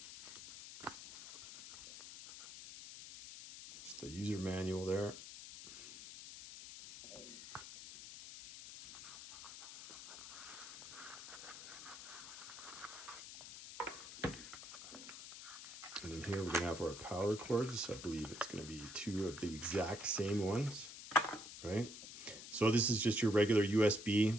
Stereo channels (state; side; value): noise; left; hiss, 12 dB below the sound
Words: Just the user manual there. And in here we're going to have our power cords. I believe it's going to be two of the exact same ones, right? So this is just your regular